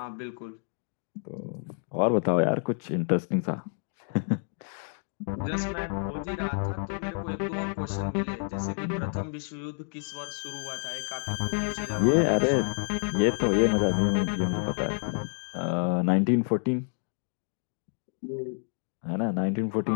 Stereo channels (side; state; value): right; silent; 59 dB below the other